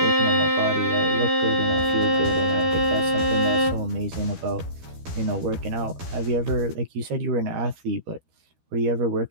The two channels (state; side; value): late; left; 12 ms